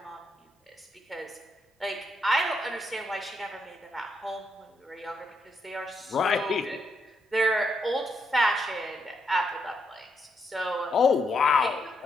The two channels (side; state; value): both; normal; correlation 0.78